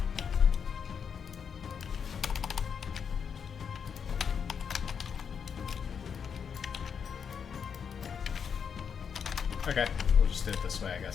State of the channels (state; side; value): quieter; right; 6.9 dB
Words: Okay, we'll just do it this way, I